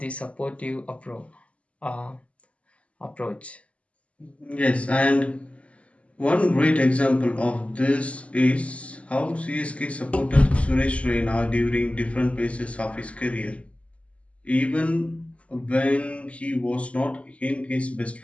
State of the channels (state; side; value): late; right; 0.063 ms